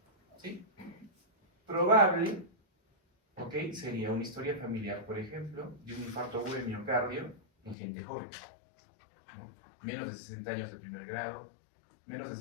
¿sí? Probable, ¿ok? Sería una historia familiar, por ejemplo, de un infarto agudo de miocardio en gente joven, ¿no? Menos de 60 años de primer grado, menos de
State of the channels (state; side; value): drops out; right; at 7.8 s